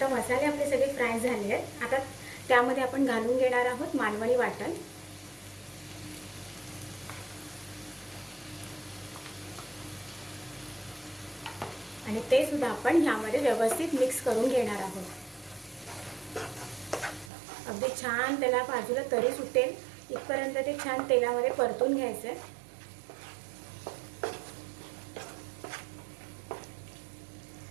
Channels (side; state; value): left; drops out; at 17.3 s